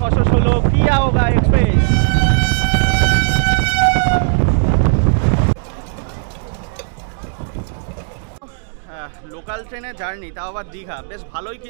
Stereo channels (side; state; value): left; silent; digital silence